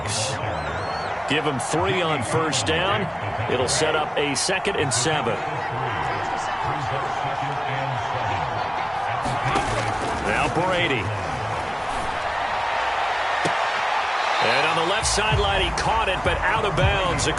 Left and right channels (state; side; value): identical; both; correlation 1.00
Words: Give him 3 on 1st down. It'll set up a 2nd and 7. Now Brady. And on the left sideline, he caught it, but out of bounds,